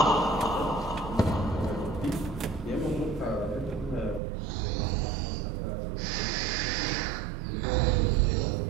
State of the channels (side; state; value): left; drops out; at 4.2 s